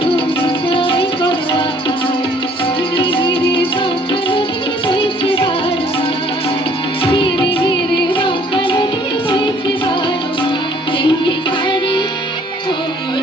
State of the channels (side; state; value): both; normal; correlation 0.59